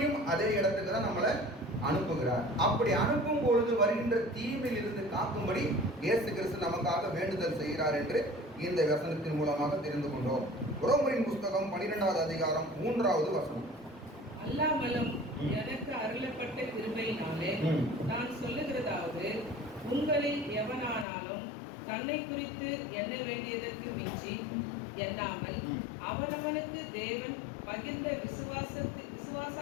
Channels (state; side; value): drops out; right; at 21.1 s